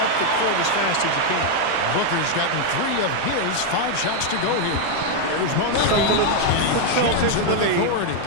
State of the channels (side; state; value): both; different; correlation 0.00